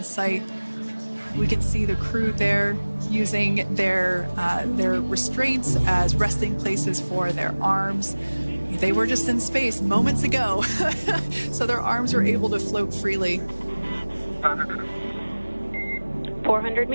site. We can see the crew there using their restraints as resting places for their arms. They were just in space moments ago, so their arms were able to float freely. 400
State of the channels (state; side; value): inverted; both; correlation -1.00